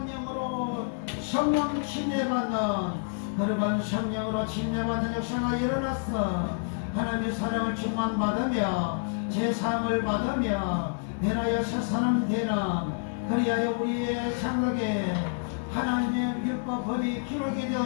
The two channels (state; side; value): silent; right; digital silence